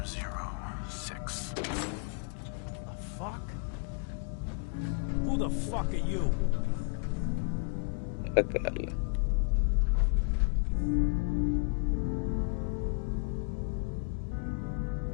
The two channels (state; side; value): quieter; right; 38.4 dB